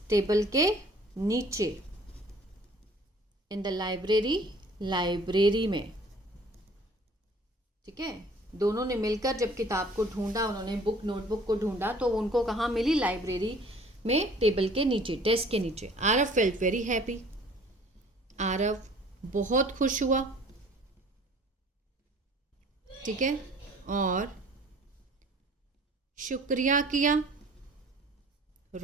टेबल के नीचे, इन द लाइब्रेरी, लाइब्रेरी में। ठीक है, दोनों ने मिलकर जब किताब को ढूंढा, उन्होंने बुक नोटबुक को ढूंढा तो उनको कहाँ मिली, लाइब्रेरी में, टेबल के नीचे, डेस्क के नीचे। Aarav felt very happy, Aarav बहुत खुश हुआ। ठीक है, और शुक्रिया किया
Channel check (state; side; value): normal; both; correlation 0.52